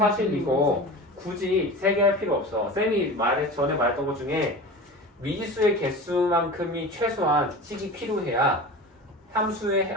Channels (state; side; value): normal; both; correlation 0.32